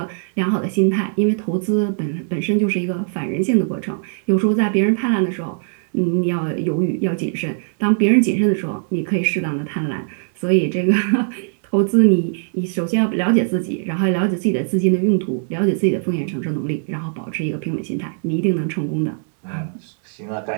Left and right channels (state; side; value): silent; left; digital silence